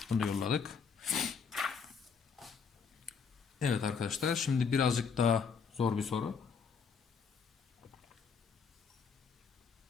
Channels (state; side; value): quieter; right; 6.0 dB